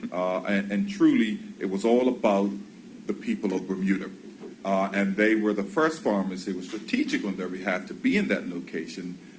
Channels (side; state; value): both; identical; correlation 1.00